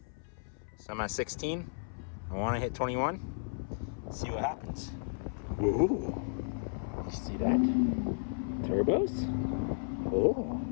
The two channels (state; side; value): silent; right; 55 dB below the other